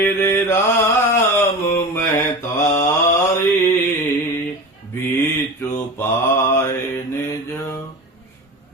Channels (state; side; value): normal; both; correlation 0.30